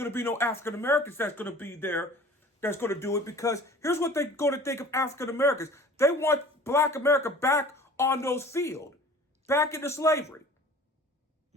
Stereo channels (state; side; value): normal; both; correlation 0.45